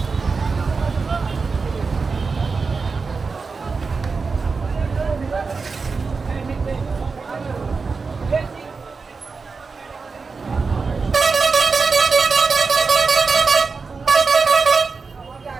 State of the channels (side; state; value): left; quieter; 4.6 dB